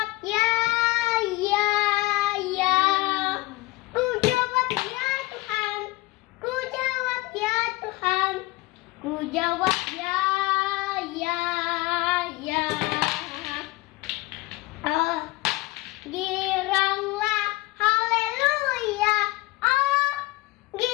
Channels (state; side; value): quieter; right; 21.0 dB